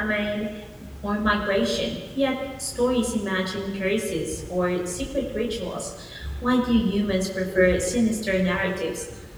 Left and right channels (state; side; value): identical; both; correlation 1.00